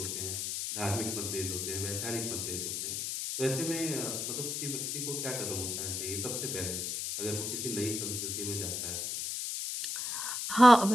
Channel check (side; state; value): left; noise; hiss, 2 dB below the sound